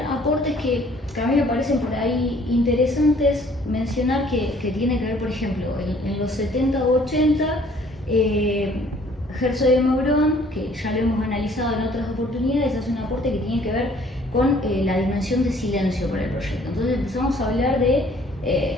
que a mí me parecen por ahí interesantes mencionar, que tiene que ver, por ejemplo, en los 70 o 80, Herzog de Meuron, que ya lo hemos analizado en otras oportunidades, hace un aporte que tiene que ver con la dimensión de silencio para el proyecto. Entonces empezamos a hablar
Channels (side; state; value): both; normal; correlation 0.58